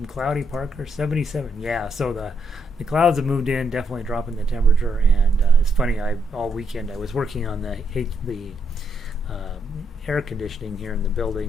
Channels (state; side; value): normal; both; correlation 0.76